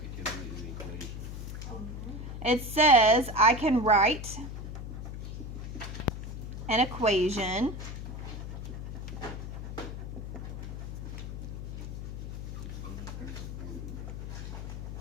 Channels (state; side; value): noise; left; hum, 7 dB below the sound